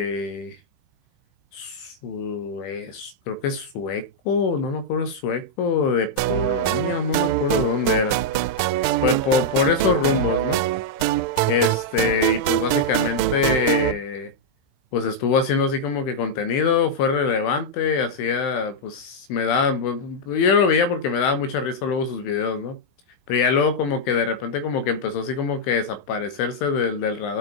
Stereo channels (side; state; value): right; late; 15 ms